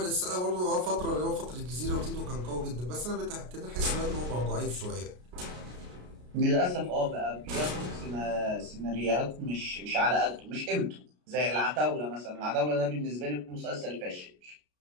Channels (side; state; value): left; late; 33 ms